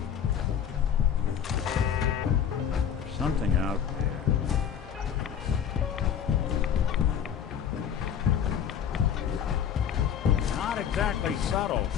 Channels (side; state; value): right; quieter; 8.5 dB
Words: Something out there. Not exactly subtle,